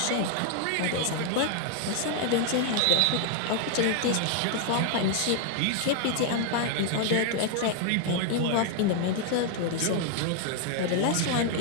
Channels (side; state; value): both; different; correlation 0.00